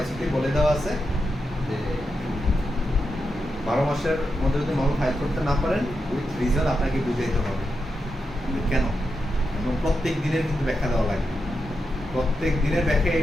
বলে দেওয়া আছে যে 12 মাসের মধ্যে যদি মামলা ফাইল করতে না পারেন, উইথ রিজন আপনাকে বুঝাইতে হবে কিন্তু কেন, এবং প্রত্যেক দিনের কিন্তু ব্যাখ্যা দেওয়া লাগবে। প্রত্যেক দিনের ব্যাখ্যা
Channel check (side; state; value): both; normal; correlation 0.87